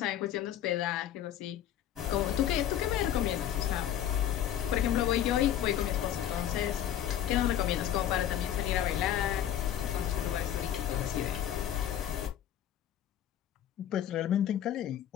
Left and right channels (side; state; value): right; quieter; 10.9 dB